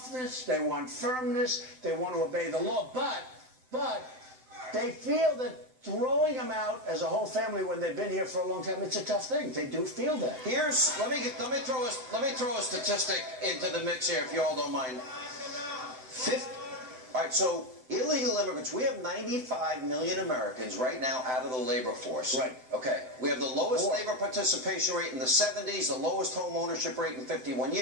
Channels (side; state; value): left; late; 7.8 ms